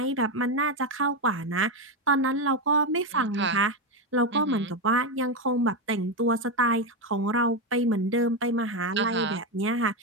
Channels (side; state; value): both; normal; correlation 0.09